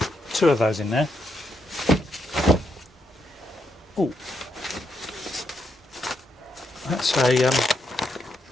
2 of those in there. Oh, that's a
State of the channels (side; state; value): both; normal; correlation 0.80